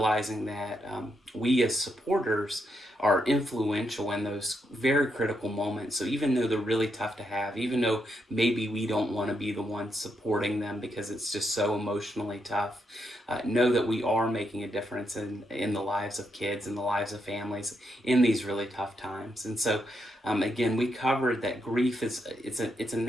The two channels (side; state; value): both; normal; correlation 0.80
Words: that we as supporters are influential in those very critical moments. So even though they're really tough to have, even though maybe we don't want to be the ones supporting them because it's just so emotionally tough, know that we are making a difference in the lives of kids and the lives of families in these really tough times. And so again, we covered that grief it's a